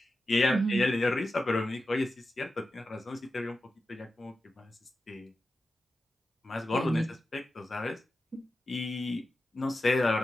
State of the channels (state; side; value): normal; both; correlation 0.92